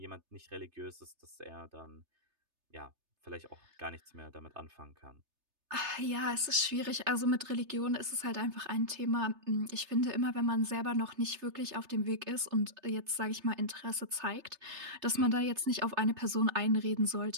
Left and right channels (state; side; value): late; left; 3.3 ms